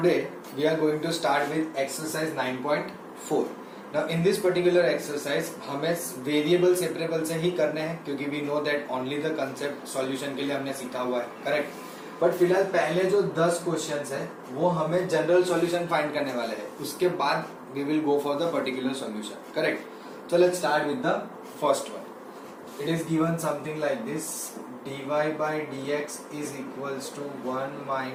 we are going to start with exercise 9.4. Now in this particular exercise हमें variable separable से ही करने हैं क्योंकि we know that only the concept solution के लिए हमने सीखा हुआ है, करेक्ट. बट फिलहाल पहले जो 10 क्वेश्चंस है वो हमें जनरल सॉल्यूशन फाइंड करने वाले हैं. उसके बाद we will go for the particular solution, correct. So let's start with the first one. It is given something like this: dy by dx is equals to 1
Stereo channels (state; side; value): identical; both; correlation 1.00